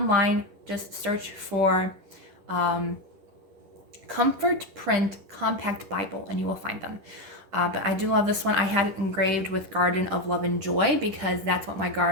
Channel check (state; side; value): late; left; 10 ms